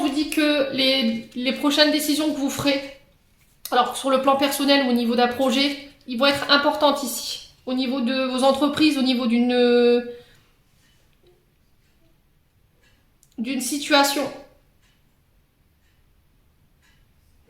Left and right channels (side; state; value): both; identical; correlation 1.00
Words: dit que les prochaines décisions que vous ferez, alors sur le plan personnel ou au niveau d'un projet, ils vont être importantes ici. Au niveau de vos entreprises, au niveau d'une situation.